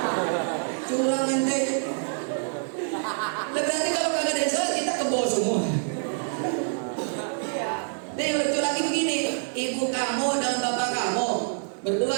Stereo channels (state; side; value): silent; left; digital silence